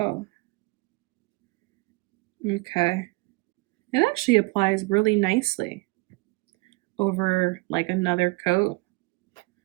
Okay. It actually applies really nicely over like another coat.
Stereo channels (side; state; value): left; quieter; 26.0 dB